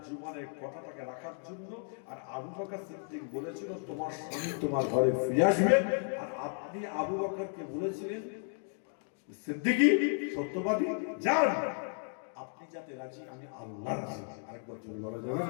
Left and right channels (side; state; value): right; silent; 55 dB below the other